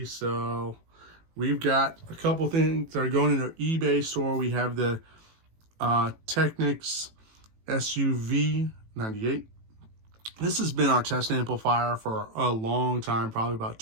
We've got a couple things that are going in our eBay store. We have the Technics SUV 98. This has been our test amplifier for a long time, probably about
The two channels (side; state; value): left; late; 18 ms